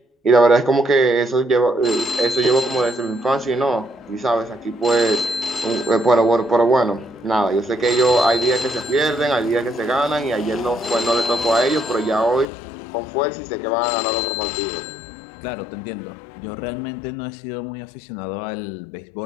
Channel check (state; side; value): drops out; right; at 12.5 s